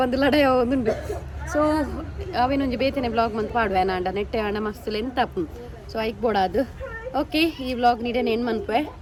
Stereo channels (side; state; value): both; identical; correlation 1.00